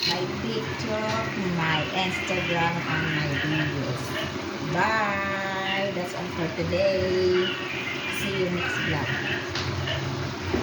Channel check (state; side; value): identical; both; correlation 1.00